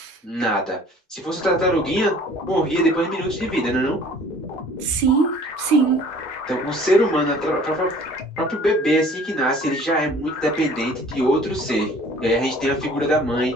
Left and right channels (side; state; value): both; normal; correlation 0.51